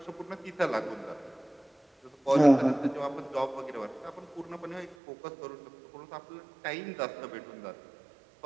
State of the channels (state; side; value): drops out; left; at 5.0 s